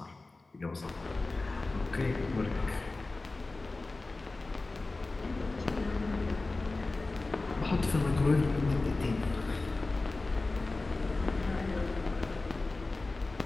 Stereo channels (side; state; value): right; quieter; 3.3 dB